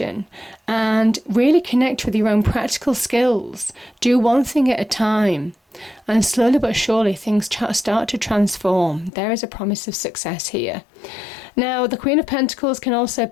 and really connect with your own practical skills. Do one thing at a time. And slowly but surely things start to transform. There is a promise of success here. Now, the Queen of Pentacles can also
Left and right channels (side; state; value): right; drops out; at 9.1 s